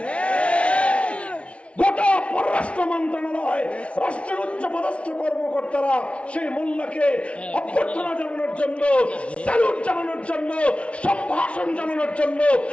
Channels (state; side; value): late; right; 0.061 ms